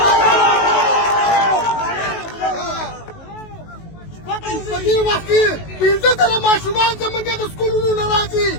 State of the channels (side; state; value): right; late; 19 ms